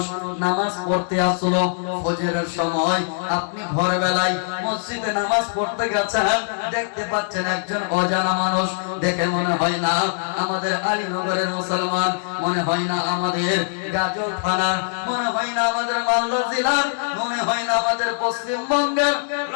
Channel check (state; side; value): silent; right; digital silence